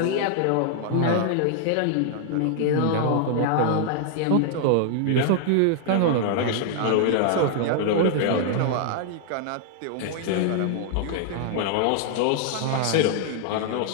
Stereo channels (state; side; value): different; both; correlation -0.01